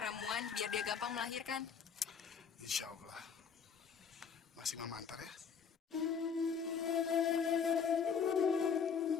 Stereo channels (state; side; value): quieter; right; 6.6 dB